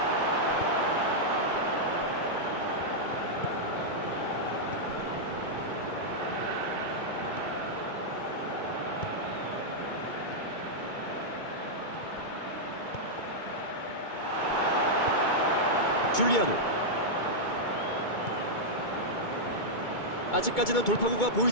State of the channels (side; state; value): right; late; 2.2 ms